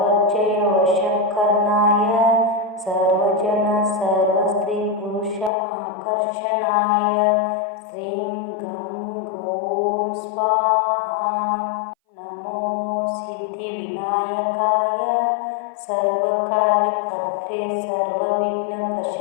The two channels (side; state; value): right; drops out; at 5.5 s